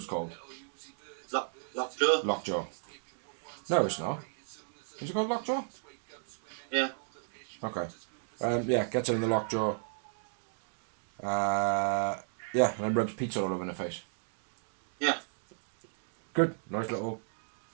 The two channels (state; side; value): silent; left; digital silence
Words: called. Lockjaw? Lockjaw. No, it's not. Is it called Lockjaw? Yeah. Okay. Yeah, gets her in the Lockjaw. Yeah, and then rubs pizza all over her face. Yeah. Good. Nice little